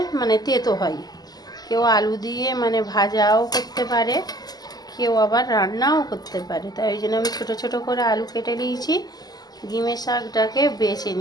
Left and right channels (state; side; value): late; right; 0.19 ms